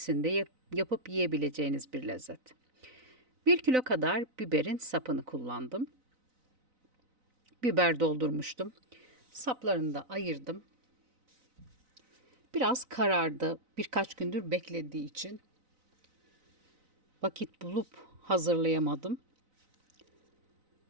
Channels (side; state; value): left; late; 4.0 ms